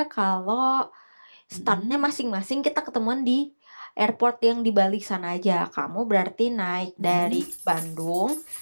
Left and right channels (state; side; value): inverted; both; correlation -1.00